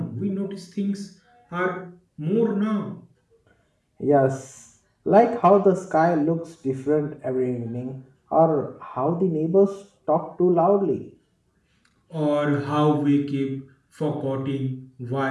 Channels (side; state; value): both; identical; correlation 1.00